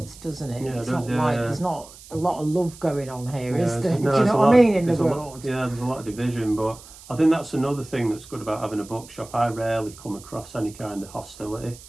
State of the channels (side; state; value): right; noise; hiss, 19 dB below the sound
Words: doesn't it? Yeah, it's it does, not like there's not a lot of love going on here, is there? No, do you know what I mean, in the world? There's a lot of division, but I think that's another thing that's good about having a bookshop. I rarely come across any kind of hostility.